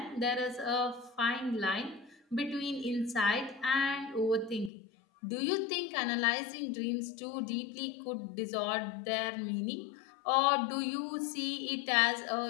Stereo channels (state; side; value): drops out; right; at 4.7 s